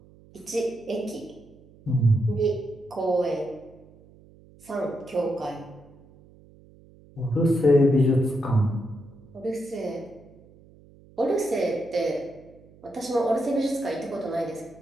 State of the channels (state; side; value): noise; right; hum, 25 dB below the sound